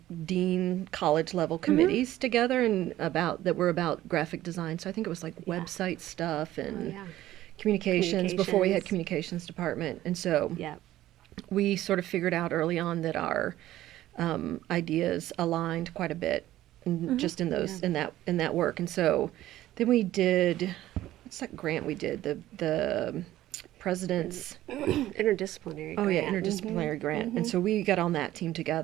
dean college level committees together and that were about graphic design. So I think it was like website stuff and communications before we had communications department. And so we sort of figured out early on that our ideas aligned quite a bit just in those in that work. And so then we did, what's that grant we did? The president's interdisciplinary grant. Interdisciplinary grant. And so we got on that team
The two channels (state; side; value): quieter; left; 14.4 dB